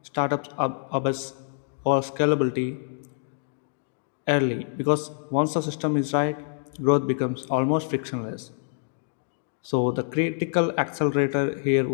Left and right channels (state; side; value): silent; right; digital silence